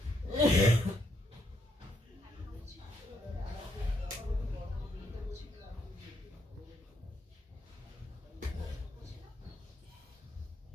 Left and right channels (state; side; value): normal; both; correlation 0.75